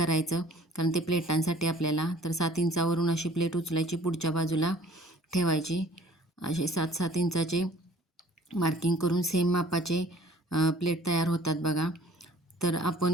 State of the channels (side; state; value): both; normal; correlation 0.53